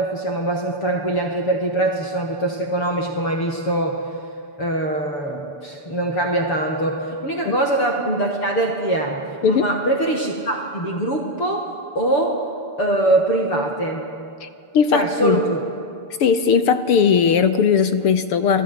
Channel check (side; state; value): right; late; 6.9 ms